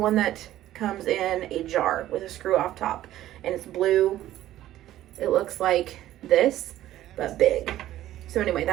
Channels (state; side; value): quieter; left; 13.6 dB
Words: that comes in a jar with a screw off top, and it's blue. It looks like this, but big. So anyway,